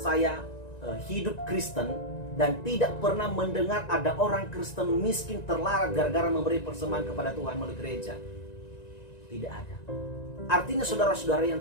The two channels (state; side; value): late; right; 1.9 ms